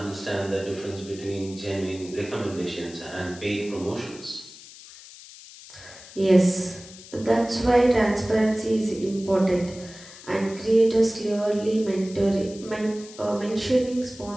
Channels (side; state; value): left; noise; hiss, 18 dB below the sound